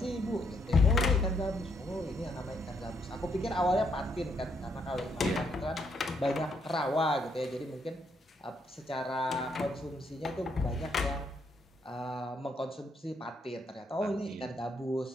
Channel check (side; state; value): both; normal; correlation 0.75